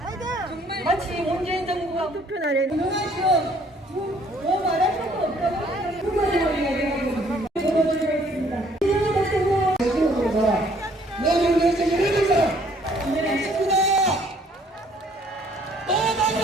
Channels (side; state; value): both; normal; correlation 0.61